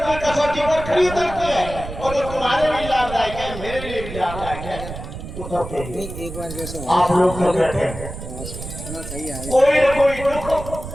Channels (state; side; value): noise; right; rumble, 10 dB below the sound